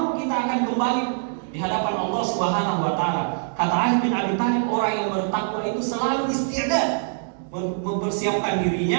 kita akan kembali di hadapan Allah Subhanahu wa taala. Kata Ali bin Abi Thalib, orang yang bertakwa itu selalu isti'dad, mempersiapkan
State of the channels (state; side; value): silent; left; digital silence